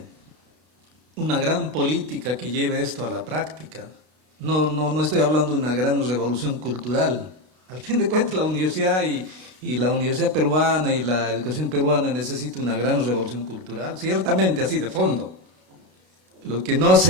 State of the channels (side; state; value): left; late; 32 ms